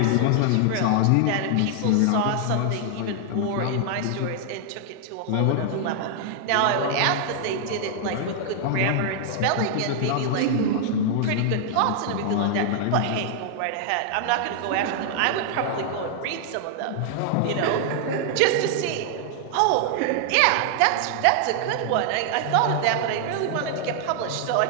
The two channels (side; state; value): both; different; correlation 0.00